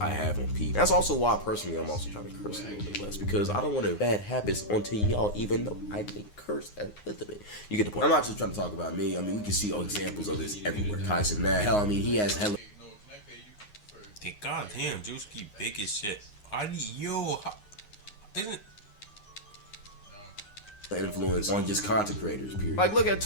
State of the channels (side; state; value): right; late; 9.6 ms